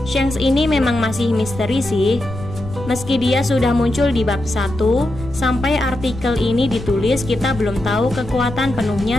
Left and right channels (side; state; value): left; noise; rumble, 12 dB below the sound